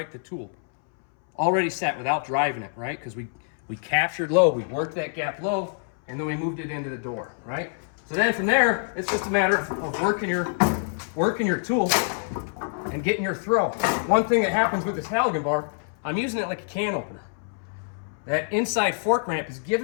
the tool. Already set without driving it, right? Because we captured low, we worked that gap low, and then we moved it into the door, right? So then from there, it's just a matter of working your tool and getting your throw. One thing that happens with this halligan bar, I'm using it like a can opener. That inside fork ramp is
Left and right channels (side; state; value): right; silent; 61 dB below the other